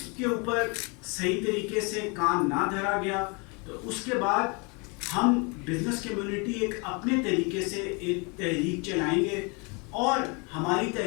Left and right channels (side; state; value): right; quieter; 31.4 dB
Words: کے اوپر صحیح طریقے سے کام نہ دھرا گیا تو اس کے بعد ہم بزنس کمیونٹی ایک اپنے طریقے سے ایک تحریک چلائیں گے, اور ہماری